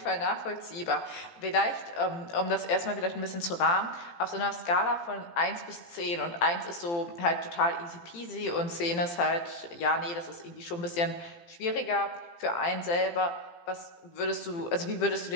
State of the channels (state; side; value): late; right; 18 ms